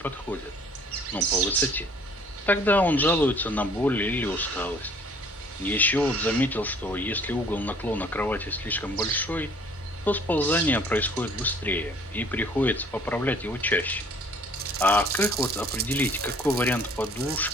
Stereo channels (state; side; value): normal; both; correlation 0.55